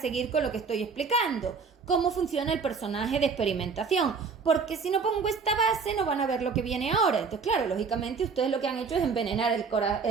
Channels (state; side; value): quieter; left; 5.2 dB